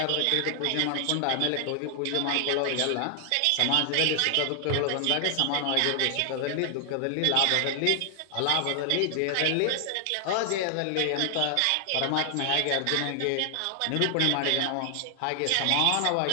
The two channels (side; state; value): both; different; correlation 0.00